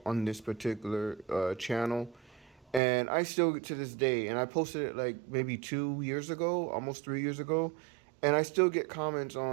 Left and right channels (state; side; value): drops out; left; at 2.8 s